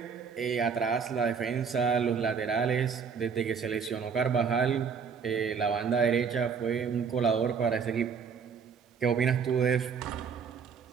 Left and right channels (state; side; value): quieter; left; 6.2 dB